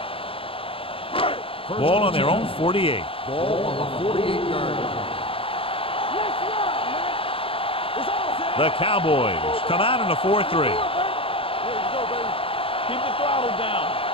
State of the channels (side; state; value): right; late; 0.27 ms